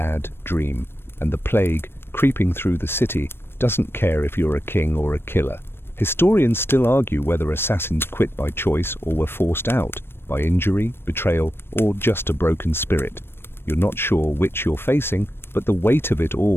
dream, and the plague, creeping through the city, doesn't care if you're a king or a killer. Historians still argue whether assassins quit by choice or were forced out, by injury, betrayal, or just a broken spirit. You're not sure which you're facing, but the weight of it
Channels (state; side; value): late; right; 0.11 ms